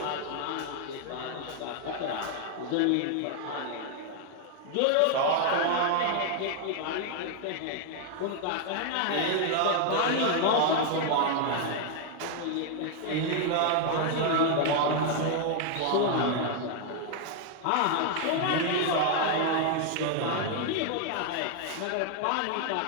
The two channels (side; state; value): both; different; correlation 0.00